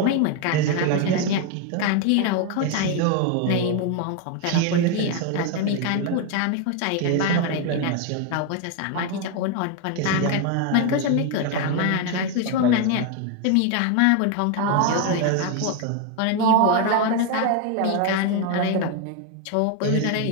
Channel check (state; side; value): different; both; correlation 0.01